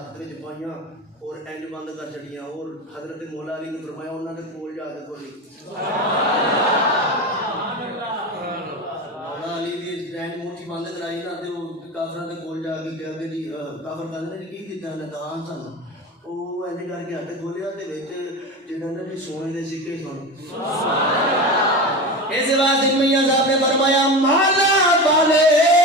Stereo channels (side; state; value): both; normal; correlation 0.25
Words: وچ پائیاں اور اینج بند کر چڑیاں. اور حضرت مولا علی نے فرمایا انہوں نے کول جا کے کھولی. مولا علی دی اینج موٹھی بند کرائی نا تے وہ کافراں دے کول جا کے کہا کہ جی کافر کہندے نے کی کیتا نے دان سن. وہ اینج کر کے ہاتھ کھولیا تے وچ جڑا نا جی سونے دے سکے سن. اس واسطے میاں صاحب نے فرمایا مالا والے